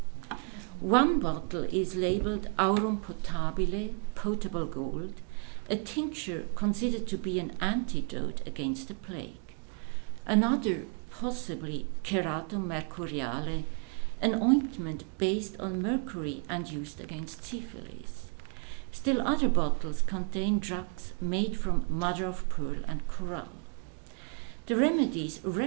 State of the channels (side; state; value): left; quieter; 36.7 dB